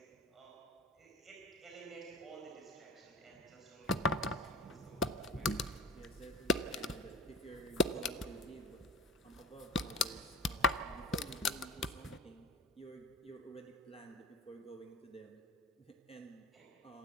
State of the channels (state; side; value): normal; both; correlation 0.37